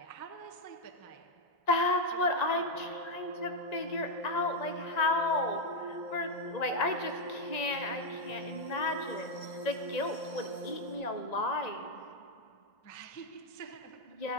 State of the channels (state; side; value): late; right; 1.9 ms